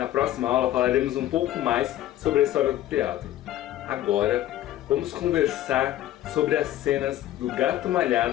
Na próxima aula falaremos um pouco mais sobre a história do teatro. Agora, vamos conversar sobre as cenas do Gato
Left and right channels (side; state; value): right; quieter; 13.4 dB